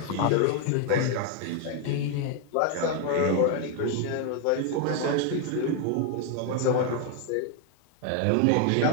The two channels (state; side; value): different; both; correlation 0.01